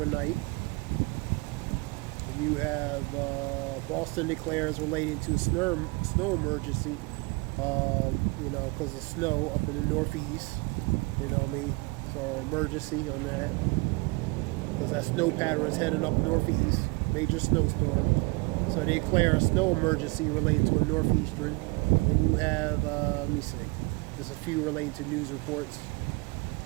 And you have Boston declares relating to snow emergency, because of snow up in the northeast. You know what I mean? So emergency on that. Because that snow pattern is heading up northeast. Major snowstorm. So they declare a snow emergency relating to a northeastern. And you have, let me see. There's a few relating to news reports.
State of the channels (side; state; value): left; quieter; 27.3 dB